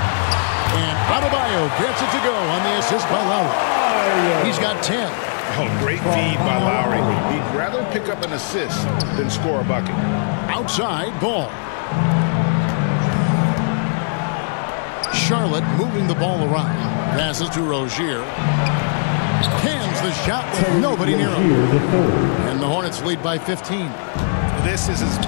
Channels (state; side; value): silent; right; digital silence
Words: And Adebayo gets it to go on the assist by Lowry. He's got 10. Oh, great feed by Lowry. He'd rather pick up an assist than score a bucket. Outside Ball. Charlotte moving the ball around. Passes to Rozier. Cans the shot with nobody near him. And the Hornets lead by 15. This is as